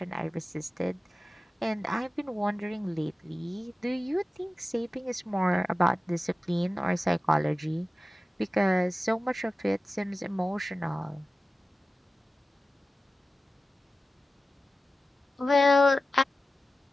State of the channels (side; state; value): both; normal; correlation 0.94